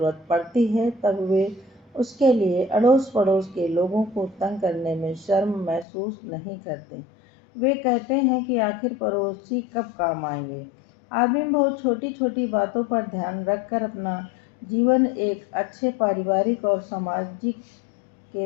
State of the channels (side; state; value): right; drops out; at 5.9 s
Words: पड़ती है, तब वे उसके लिए अड़ोस पड़ोस के लोगों को तंग करने में शर्म महसूस नहीं करते। वे कहते हैं कि आखिर पड़ोसी कब काम आएंगे। आदमी बहुत छोटी छोटी बातों पर ध्यान रखकर अपना जीवन एक अच्छे पारिवारिक और सामाजिक